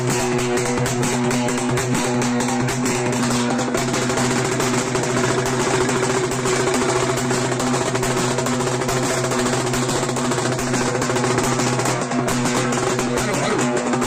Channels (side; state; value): both; identical; correlation 1.00